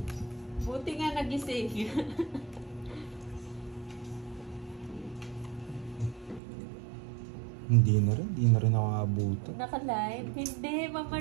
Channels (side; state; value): left; drops out; at 6.4 s